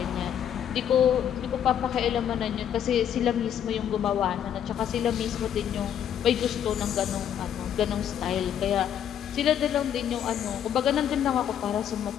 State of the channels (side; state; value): right; quieter; 9.5 dB